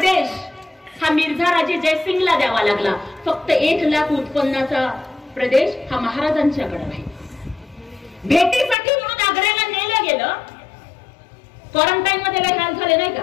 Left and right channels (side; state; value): right; drops out; at 8.8 s